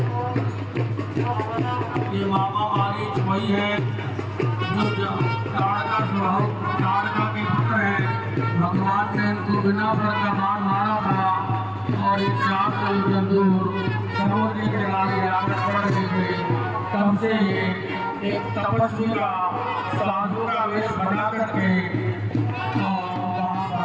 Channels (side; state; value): both; identical; correlation 1.00